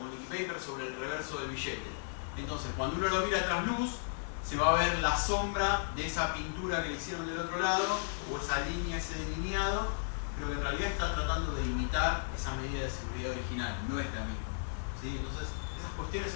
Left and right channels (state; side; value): silent; right; digital silence